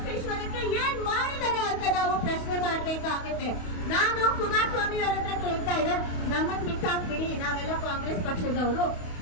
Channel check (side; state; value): right; late; 28 ms